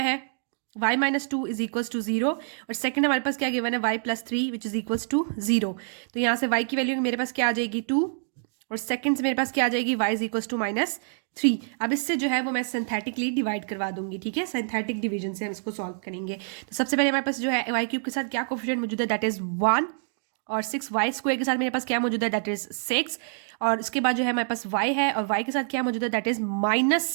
है y minus 2 is equals to 0 और सेकंड हमारे पास क्या गिवन है y plus 3 which is equals to 0। तो यहाँ से y की वैल्यू मेरे पास क्या आ जाएगी 2 और सेकंड से मेरे पास क्या आ जाएगी y is equals to minus 3। अब इससे जो है वो मैं सिंथेटिकली डिवाइड करवा दूंगी, ठीक है, सिंथेटिक डिवीजन से हम इसको सॉल्व करेंगे। तो सबसे पहले हमारे पास जो है y क्यूब के साथ क्या कोफिशिएंट मौजूद है, दैट इज 1 और 6y स्क्वायर के साथ मेरे पास क्या मौजूद है, दैट इज 6 और उसके बाद जो है हमारे पास y है और y के साथ क्या मौजूद है, दैट इज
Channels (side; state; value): left; silent; digital silence